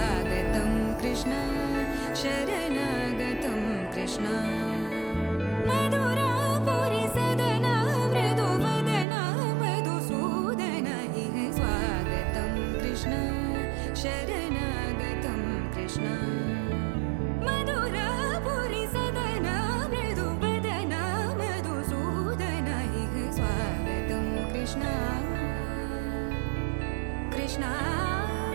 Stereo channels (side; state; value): left; drops out; at 9.1 s